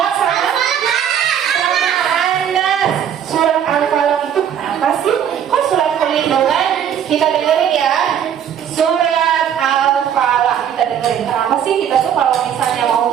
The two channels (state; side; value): quieter; left; 9.1 dB